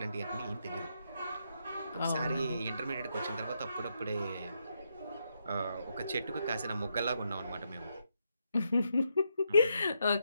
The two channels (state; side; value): inverted; both; correlation -0.81